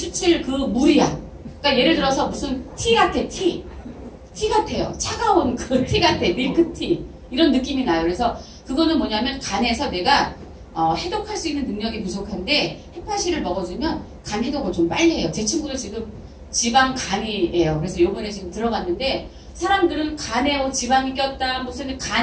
그 물이야. 그러니까 예를 들어서 무슨 티 같아. 티 같아요. 차가운 그 티 같아. 밀크티. 이런 느낌이 나요. 그래서 그거는 뭐냐면 간에서 내가 해독할 수 있는 능력이 부족한데 헤파실을 먹어주면 간 해독을 좀 빨리 해요. 제 친구도 지금 지방간이에요. 그래서 요번에 지금 들어갔는데 사람들은 간에 지방이 꼈다 무슨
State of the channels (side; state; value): both; identical; correlation 1.00